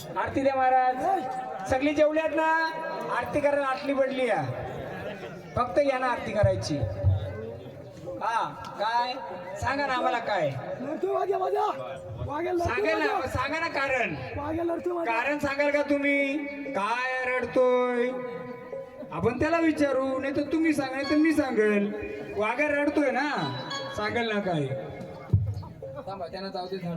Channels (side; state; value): both; identical; correlation 1.00